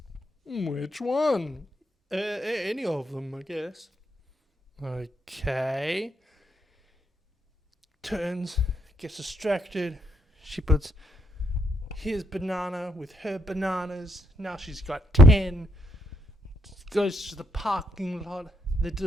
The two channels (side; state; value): both; normal; correlation 0.75